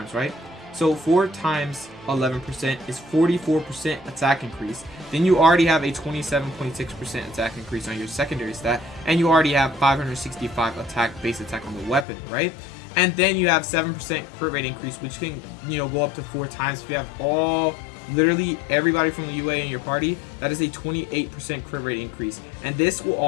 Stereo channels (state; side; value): drops out; right; at 12.1 s